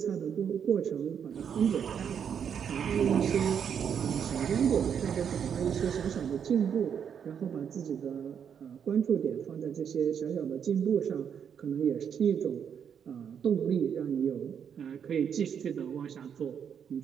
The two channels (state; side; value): quieter; left; 7.8 dB